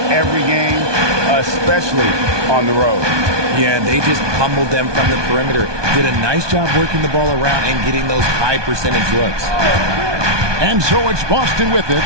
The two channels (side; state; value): left; late; 1.2 ms